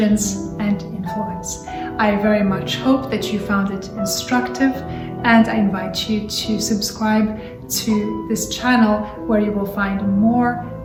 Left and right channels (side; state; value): both; identical; correlation 1.00